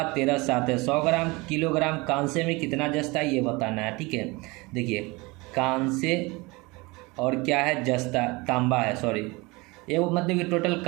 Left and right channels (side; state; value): left; quieter; 24.6 dB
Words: 13:7 है। 100 ग्राम किलोग्राम कांसे में कितना जस्ता है ये बताना है। ठीक है, देखिए कांसे और क्या है? जस्ता, तांबा है, सॉरी, ये वो मतलब कि टोटल